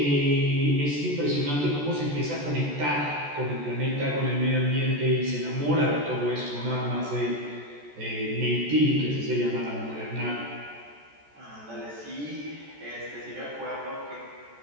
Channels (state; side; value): late; left; 14 ms